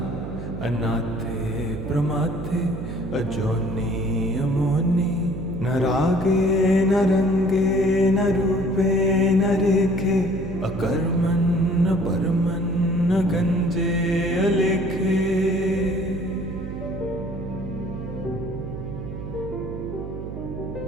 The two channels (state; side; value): noise; right; hum, 8 dB below the sound